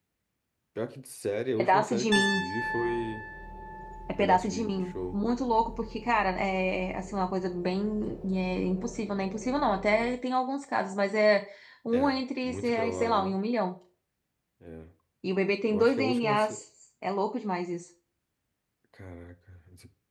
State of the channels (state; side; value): identical; both; correlation 1.00